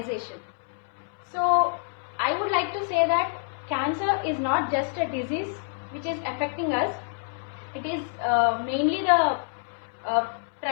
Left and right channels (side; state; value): right; silent; 60 dB below the other